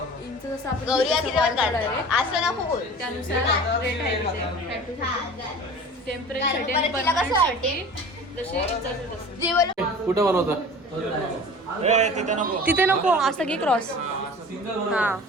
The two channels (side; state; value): both; normal; correlation 0.41